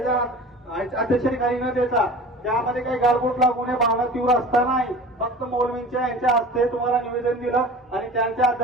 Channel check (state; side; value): normal; both; correlation 0.39